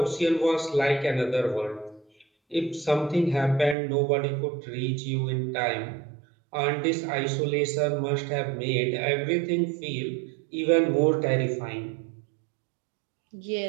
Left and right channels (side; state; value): left; drops out; at 3.8 s